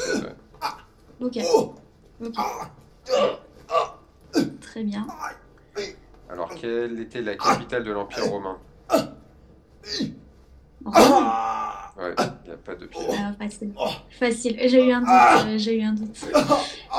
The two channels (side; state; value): both; identical; correlation 1.00